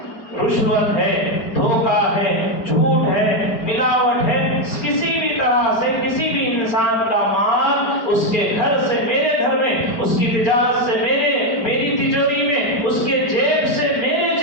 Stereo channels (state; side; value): late; right; 4.7 ms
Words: رشوت ہے، دھوکہ ہے، جھوٹ ہے، ملاوٹ ہے، کسی بھی طرح سے کسی بھی انسان کا مال اس کے گھر سے میرے گھر میں، اس کی تجارت سے میری تجوری میں، اس کے جیب سے میرے